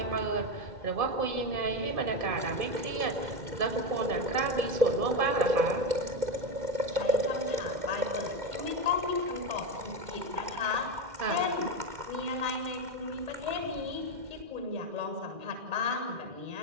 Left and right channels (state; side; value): late; left; 2.0 ms